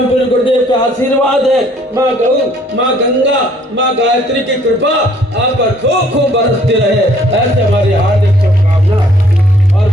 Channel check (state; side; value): normal; both; correlation 0.61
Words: पूज्य गुरुदेव का आशीर्वाद है। माँ गौ, माँ गंगा, माँ गायत्री की कृपा आप पर खूब खूब बरसती रहे, ऐसे हमारी हार्दिक शुभकामना। और